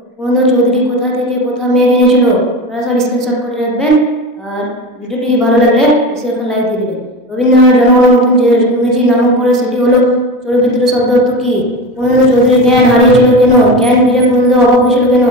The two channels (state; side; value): normal; both; correlation 0.25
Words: পুরন্দর চৌধুরী কোথা থেকে কোথা মেঘ এনেছিল আপনারা সব স্ক্রিনশট করে রাখবেন। আর ভিডিওটি ভালো লাগলে এসে এখন লাইক দিয়ে দেবেন। রবীন্দ্রনাথ জনগণের মতন যে ইংরেজি নামক করে সেটি হলো চরিত্র শব্দ অর্থ কি? পুরন্দর চৌধুরীর জ্ঞান হারিয়েছিল কেন? জ্ঞান ফিরে পুরন্দর অভাব হয়েছিল কেন?